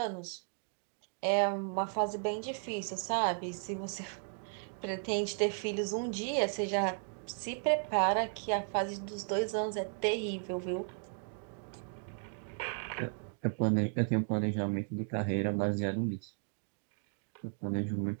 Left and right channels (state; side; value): silent; left; 54 dB below the other